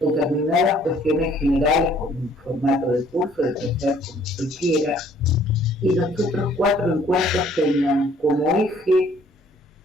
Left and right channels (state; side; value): normal; both; correlation 0.59